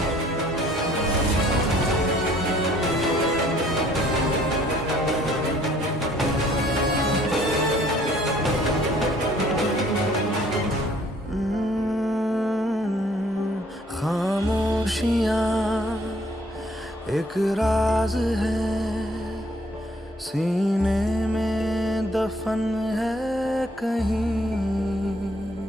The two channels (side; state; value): both; normal; correlation 0.60